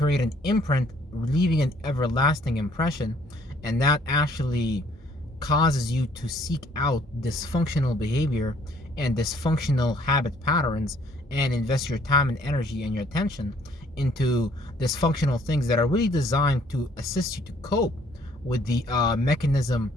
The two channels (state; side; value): normal; both; correlation 0.60